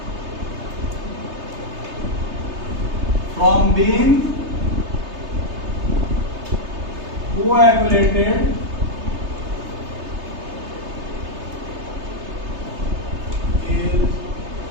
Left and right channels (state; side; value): late; left; 3.3 ms